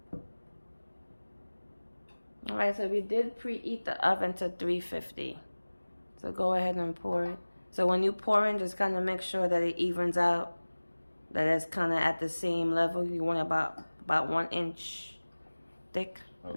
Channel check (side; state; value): both; inverted; correlation -1.00